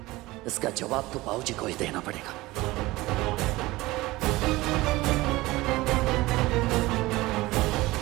इसका जवाब तो बाबूजी को ही देना पड़ेगा।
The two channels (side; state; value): left; quieter; 19.6 dB